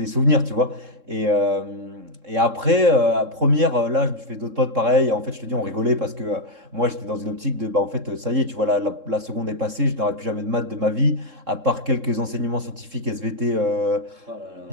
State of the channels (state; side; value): late; left; 3.7 ms